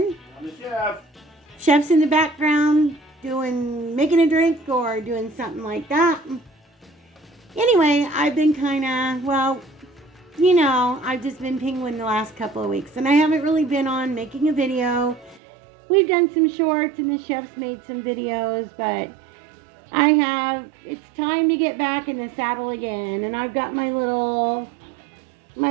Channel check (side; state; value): left; drops out; at 15.4 s